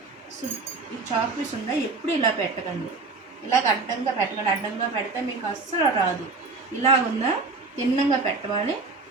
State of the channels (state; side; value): quieter; left; 3.9 dB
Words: చాక్ పీస్ ఉందా ఎప్పుడు ఇలా పెట్టకండి. ఇలాగ అడ్డంగా పెట్టకండి. అడ్డంగా పెడితే మీకు అస్సలు రాదు. ఇలాగుందా తిన్నంగా పెట్టవాలి.